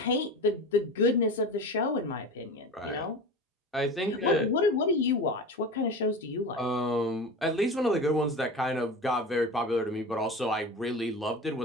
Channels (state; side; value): normal; both; correlation 0.30